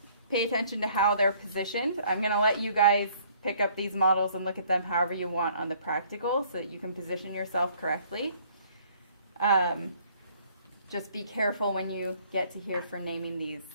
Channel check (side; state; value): both; inverted; correlation -0.60